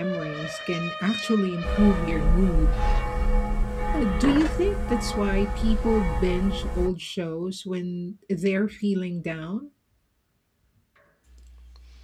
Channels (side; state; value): both; identical; correlation 1.00